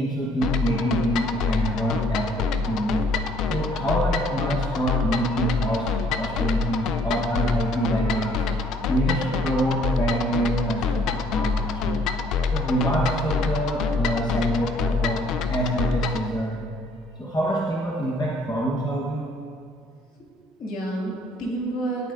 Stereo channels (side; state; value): both; normal; correlation 0.61